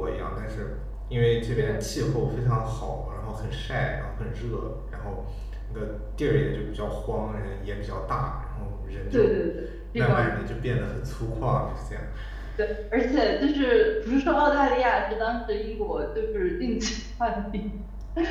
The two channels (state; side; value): identical; both; correlation 1.00